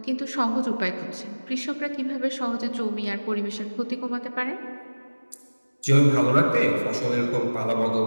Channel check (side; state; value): both; inverted; correlation -1.00